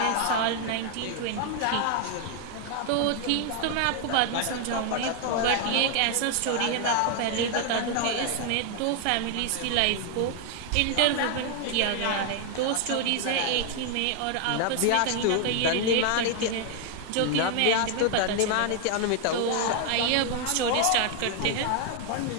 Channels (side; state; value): both; different; correlation 0.00